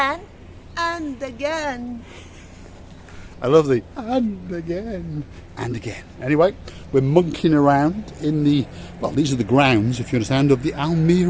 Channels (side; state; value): both; identical; correlation 1.00